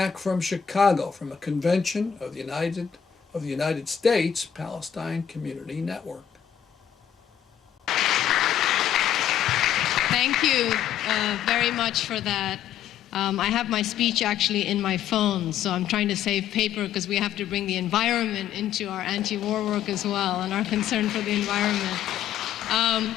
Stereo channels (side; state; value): right; quieter; 9.4 dB